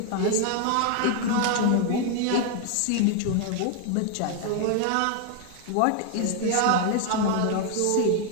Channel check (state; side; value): different; both; correlation 0.00